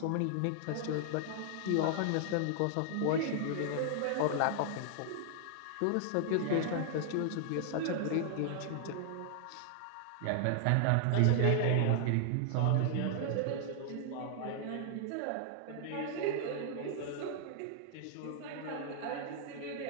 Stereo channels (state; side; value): different; both; correlation -0.01